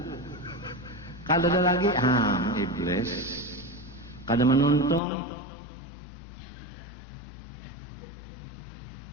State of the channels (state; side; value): drops out; right; at 5.0 s